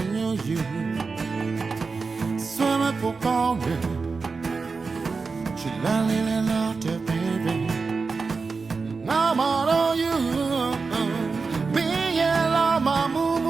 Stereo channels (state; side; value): quieter; left; 4.5 dB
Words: ိုညှို့ယူဆွမ်းမဖို့ကောင်းတယ်ချစ်လာလေးလေးလာတဲ့ baby ငါမတော်ယူမင်းရဲ့လာမမူ